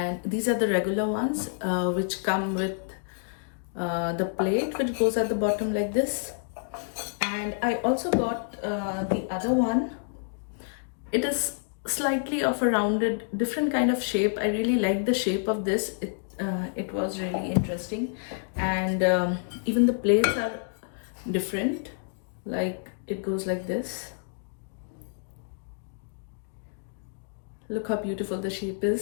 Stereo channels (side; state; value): right; silent; digital silence